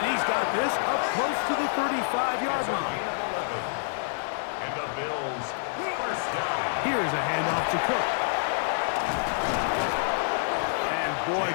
he's got this up close to the 35-yard line. And the Bills first down. Here's a handoff to Cook. And boy,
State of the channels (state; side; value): silent; right; 60 dB below the other